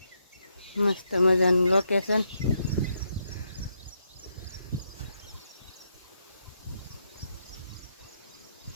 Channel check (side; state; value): both; inverted; correlation -0.80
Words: મસ્ત મજાનું લોકેશન।